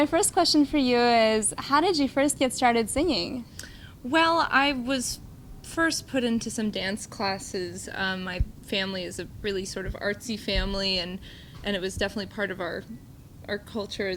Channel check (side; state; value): both; identical; correlation 1.00